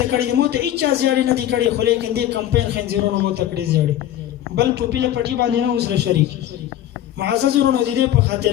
کړي دي مو ته هېچا زیاړې نه دي کړي خو لیکن دې کمپاین خنزیرونو مو ته کړي زیاړې بل ټوپي له پټي باندې نه اوس له شریک معزز ورونو د دې په خاطر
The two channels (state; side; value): quieter; right; 12.1 dB